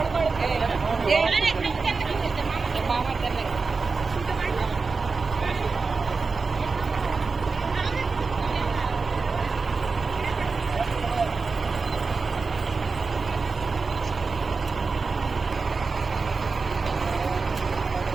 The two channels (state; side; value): quieter; left; 4.4 dB